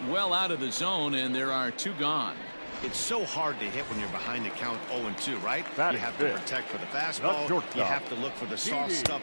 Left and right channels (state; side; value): inverted; both; correlation -1.00